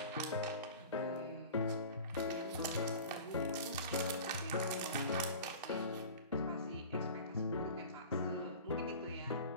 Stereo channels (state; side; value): inverted; both; correlation -0.38